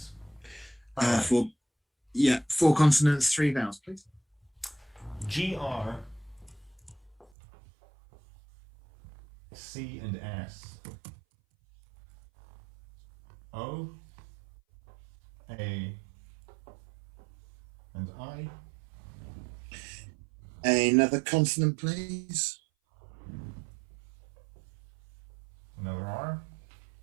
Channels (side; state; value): left; drops out; at 7.2 s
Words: 4 consonants, 3 vowels, please. GR, C and S, O, A, and I. Another consonant, please. Another R.